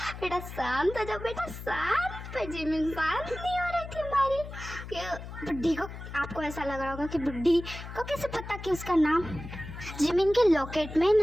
बेटा शांत हो जाओ बेटा शांत। पर जिमिन शांत नहीं हो रही थी हमारी। बुढ़ी को आपको ऐसा लग रहा होगा कि बुढ़ी को कैसे पता कि उसका नाम। जिमिन के लॉकेट में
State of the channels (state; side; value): noise; left; hum, 11 dB below the sound